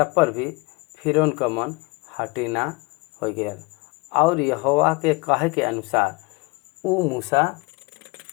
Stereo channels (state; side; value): quieter; right; 26.2 dB